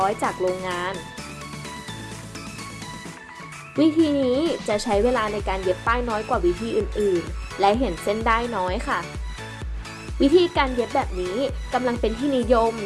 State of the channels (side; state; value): both; identical; correlation 1.00